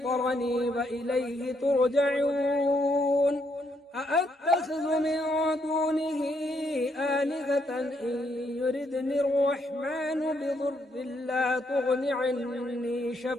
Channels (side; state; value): both; normal; correlation 0.74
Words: وإليه ترجعون أأتخذ من دونه آلهة إن يردني الرحمن بضر